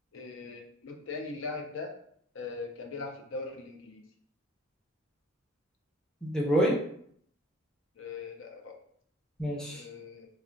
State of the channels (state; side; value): normal; both; correlation 0.51